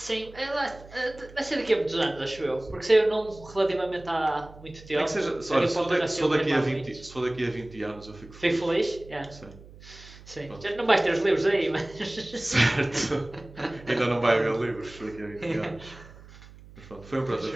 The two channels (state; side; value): noise; right; hum, 20 dB below the sound